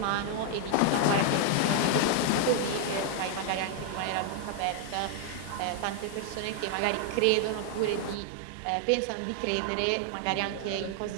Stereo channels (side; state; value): both; different; correlation 0.00